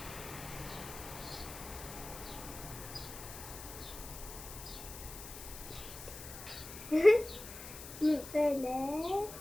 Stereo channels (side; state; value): left; noise; hiss, 12 dB below the sound